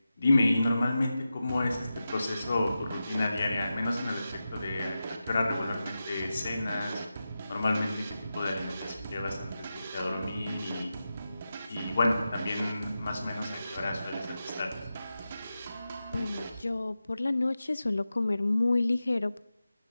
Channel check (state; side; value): inverted; both; correlation -0.92